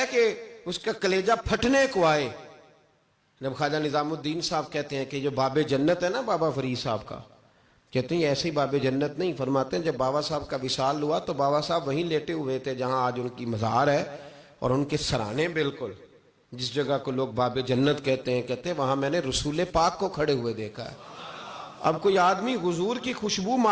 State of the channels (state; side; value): identical; both; correlation 1.00